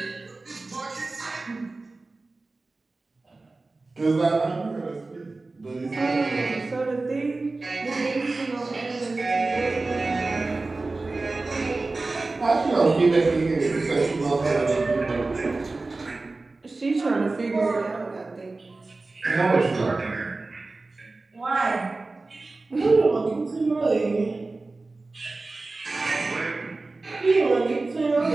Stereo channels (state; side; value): quieter; left; 3.4 dB